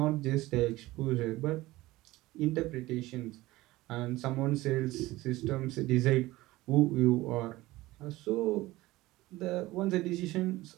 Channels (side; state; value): left; quieter; 18.6 dB